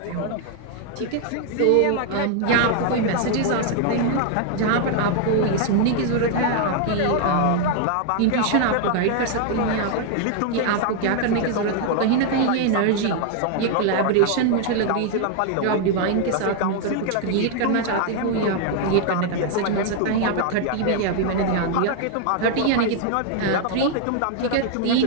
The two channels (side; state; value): both; different; correlation 0.00